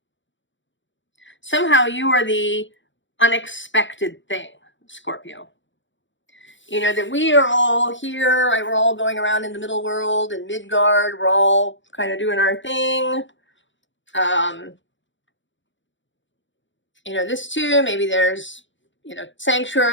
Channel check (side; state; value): right; late; 0.55 ms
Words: Somehow you are the unexpected thing, Scorpio. You know, that we are all here, right? We're all going around in the middle world, in Midgard, we're all kind of doing our thing. You know, this too, maybe there's, you know,